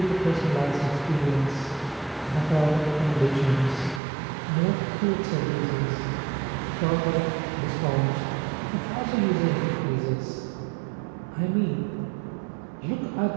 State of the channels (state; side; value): drops out; left; at 4.0 s